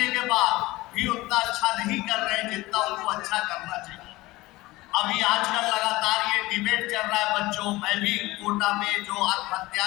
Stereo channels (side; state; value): right; quieter; 19.6 dB